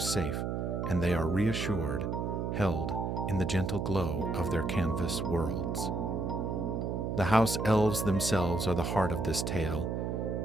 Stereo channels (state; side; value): noise; right; hum, 1 dB below the sound